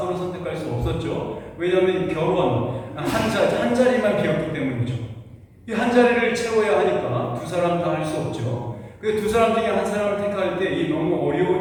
선택할 수 없었죠. 왜냐하면 결혼 한 자리만 비었기 때문이죠. 이 한 자리를 채워야 하니까 두 사람 다 할 수 없죠. 그 두 사람 중에 한 사람을 택할 때 이 너무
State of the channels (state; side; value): identical; both; correlation 1.00